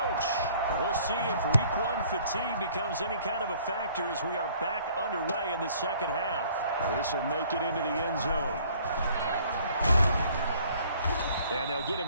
we'll see if Week 1 fatigue becomes any kind of a factor as we are back underway in the second half. This will make it into the end zone. And they'll get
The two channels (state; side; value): inverted; both; correlation -0.57